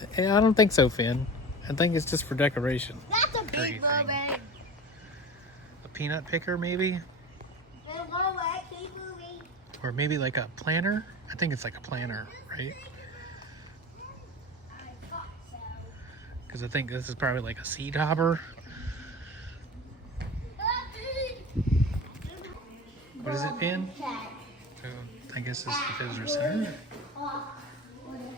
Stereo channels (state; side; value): normal; both; correlation 0.32